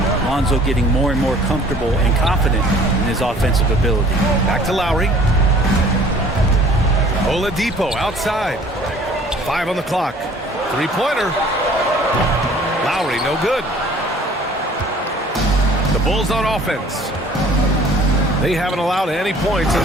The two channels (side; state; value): both; normal; correlation 0.53